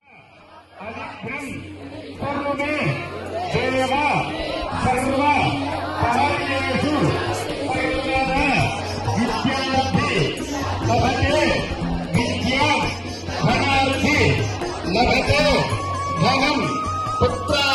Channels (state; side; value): identical; both; correlation 1.00